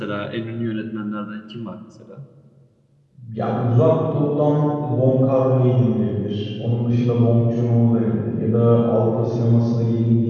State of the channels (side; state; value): both; identical; correlation 1.00